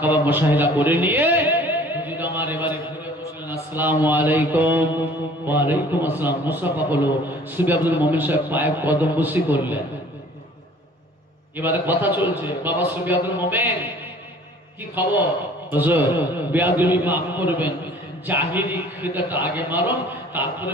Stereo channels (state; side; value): normal; both; correlation 0.51